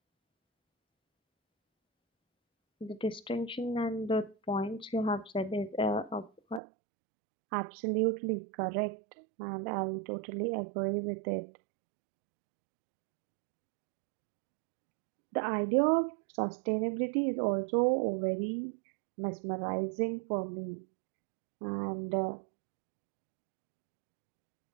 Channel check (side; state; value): left; drops out; at 6.6 s